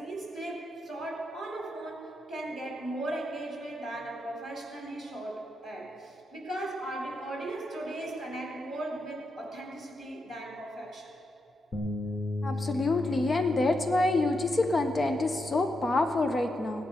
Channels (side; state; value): both; normal; correlation 0.84